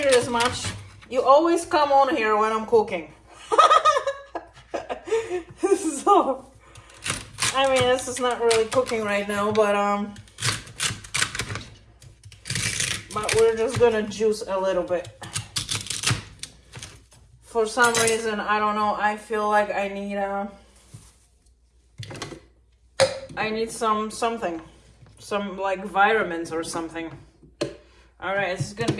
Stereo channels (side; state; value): both; identical; correlation 1.00